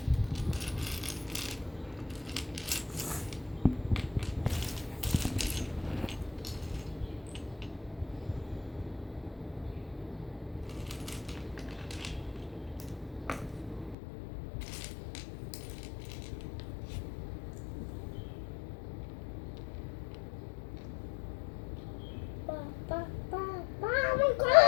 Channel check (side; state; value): right; drops out; at 14.0 s